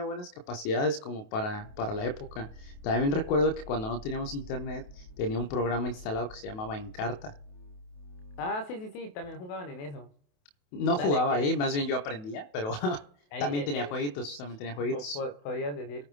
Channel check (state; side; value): late; right; 28 ms